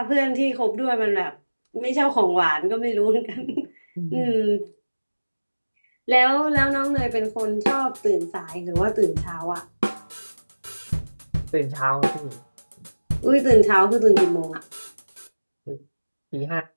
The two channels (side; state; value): both; inverted; correlation -1.00